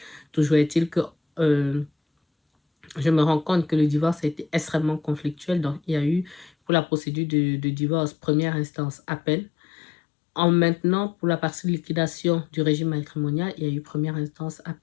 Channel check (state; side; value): drops out; right; at 6.5 s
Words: Toujours est-il que je me rends compte que le divorce a été extrêmement conflictuel. Donc, il y a eu, pour la procédure de divorce, première instance, appel. En maintenant, pour la partie de liquidation du régime matrimonial, il y a eu première instance,